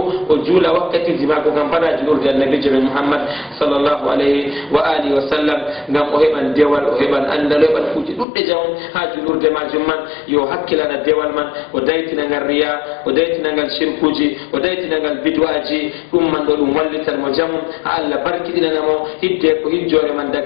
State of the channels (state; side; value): drops out; right; at 8.2 s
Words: o juula wakkatiji maako kam fana julurde annabijo men muhammad sallllahu alayhi wa alihi wa sallam ngam o heɓan dewal o heɓan andal o heɓan kuuji ɗuɗɗe jamum ha julurde majum man yo hakkilana dewal man o daytinagal riya o daytinagal shirkuji o daytinagal bid'aji ɗum man ɗo ɗum wallitan mo jamum ha Allah barkiɗinanamo hidde ko hijjore man